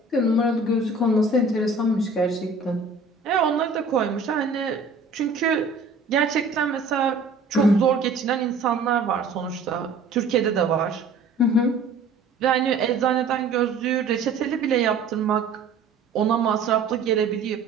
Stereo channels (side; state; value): left; quieter; 3.8 dB